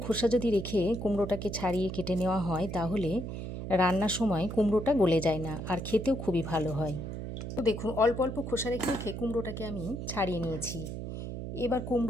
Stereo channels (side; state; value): right; noise; hum, 6 dB below the sound